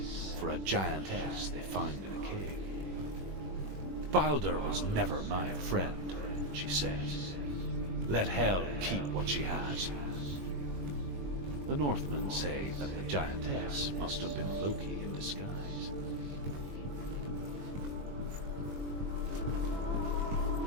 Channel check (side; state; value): left; late; 21 ms